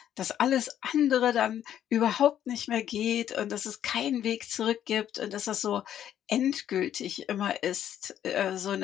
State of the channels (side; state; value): right; quieter; 10.6 dB